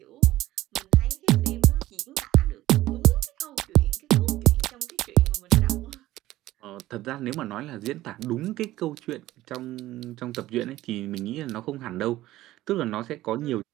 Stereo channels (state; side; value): quieter; left; 15.7 dB